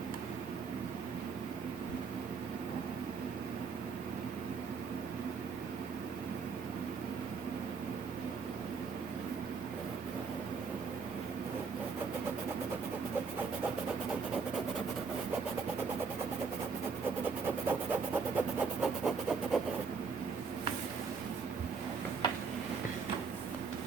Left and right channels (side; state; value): left; quieter; 5.3 dB